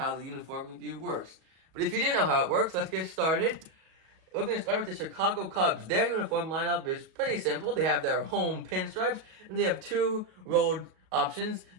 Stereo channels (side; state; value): left; late; 37 ms